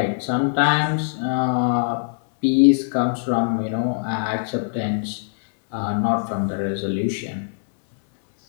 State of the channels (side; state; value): right; silent; digital silence